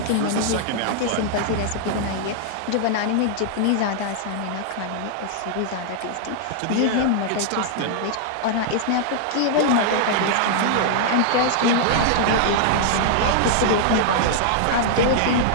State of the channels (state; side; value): different; both; correlation -0.01